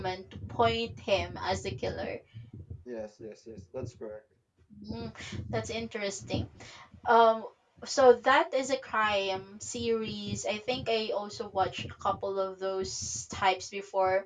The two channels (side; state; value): both; identical; correlation 1.00